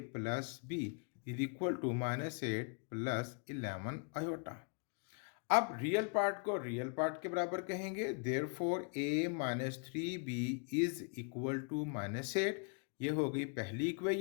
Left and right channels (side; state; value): right; quieter; 39.0 dB